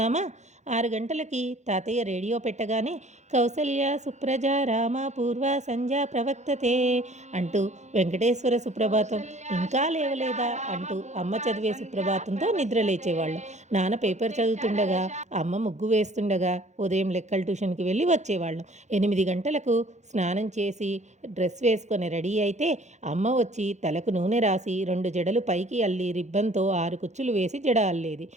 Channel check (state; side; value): late; left; 0.34 ms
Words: 6 గంటలకి తాతయ్య రేడియో పెట్టగానే కౌసల్య సుప్రజ రామ పూర్వ సంధ్య ప్రవక్తతే అంటూ వెంకటేశ్వర సుప్రభాతం, ఇంకా లేవలేదా అంటూ అమ్మ చదివే సుప్రభాతంతో నిద్ర లేచేవాళ్ళం. నాన్న పేపర్ చదువుతుండగా, అమ్మ ముగ్గు వేస్తుండగా ఉదయం లెక్కల ట్యూషన్కి వెళ్ళి వచ్చేవాళ్ళం. 8 గంటలకు స్నానం చేసి డ్రెస్ వేసుకొని రెడీ అయితే అమ్మ వచ్చి తలకు నూనె రాసి 2 జడలు పైకి అల్లి రిబ్బన్తో 6 కుచ్చులు వేసి జడ అల్లేది.